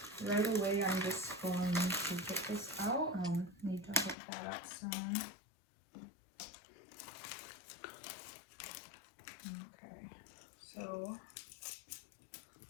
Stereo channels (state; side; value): drops out; right; at 4.2 s